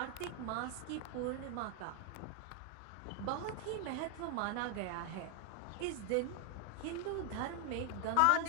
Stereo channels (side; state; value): both; different; correlation 0.00